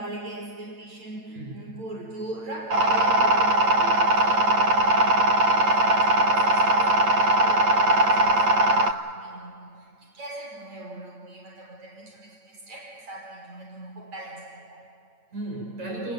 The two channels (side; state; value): left; late; 8.9 ms